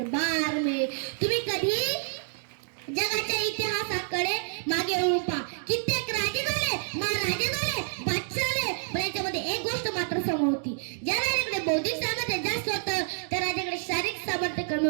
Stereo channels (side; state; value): left; silent; 59 dB below the other